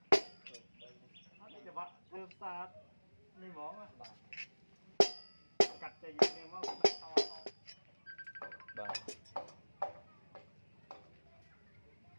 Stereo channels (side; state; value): both; inverted; correlation -1.00